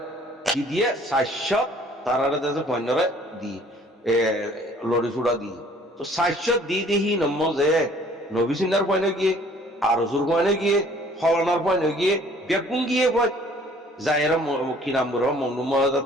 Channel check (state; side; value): normal; both; correlation 0.56